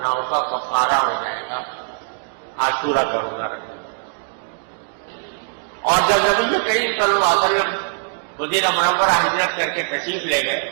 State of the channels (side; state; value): left; silent; digital silence